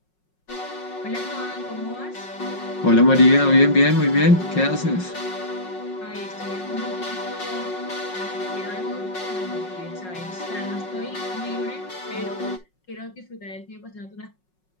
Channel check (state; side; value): late; right; 5.4 ms